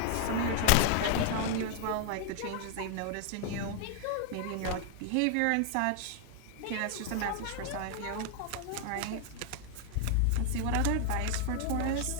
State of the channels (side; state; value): both; different; correlation 0.00